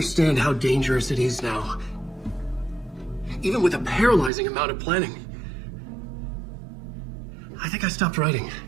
how dangerous it is now. Even with a paralyzing amount of planning. I think I stopped writing.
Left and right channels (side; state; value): left; drops out; at 4.3 s